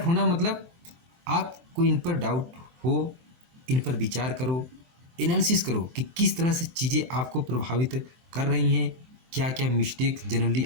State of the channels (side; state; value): left; late; 23 ms